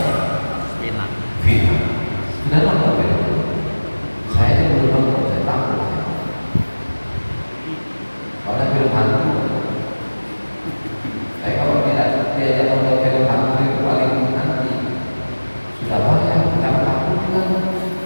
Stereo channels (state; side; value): inverted; both; correlation -1.00